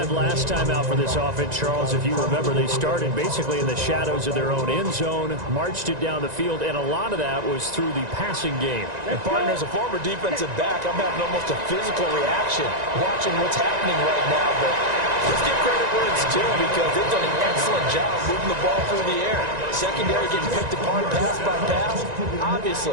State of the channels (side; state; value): left; late; 1.9 ms